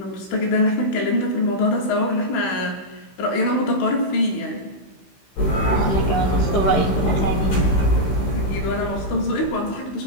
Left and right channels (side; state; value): right; late; 15 ms